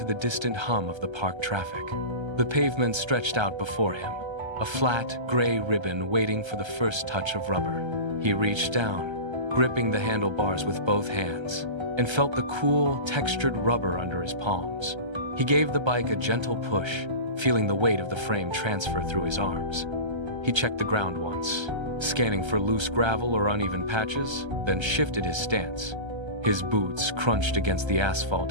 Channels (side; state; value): left; late; 1.3 ms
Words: the distant hum of the park traffic. The pavement stretched out before him, a flat, gray ribbon waiting for the first touch of rubber. He reached down, gripping the handlebars with both hands, and felt the cool, textured rubber under his palms. He gave the bike a gentle push, feeling the weight of the frame transfer through his arms. He checked the ground once, scanning for loose gravel or uneven patches, then shifted his stance. His boots crunched against the